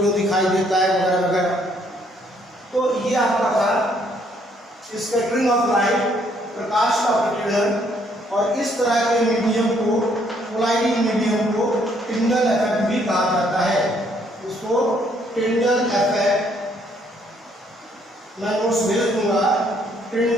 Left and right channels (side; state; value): both; normal; correlation 0.67